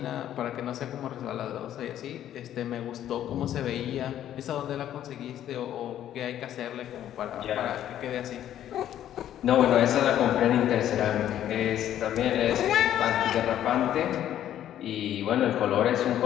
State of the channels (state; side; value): quieter; right; 11.4 dB